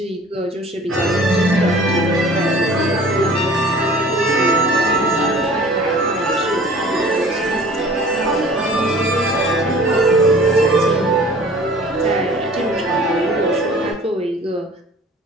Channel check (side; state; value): both; normal; correlation 0.47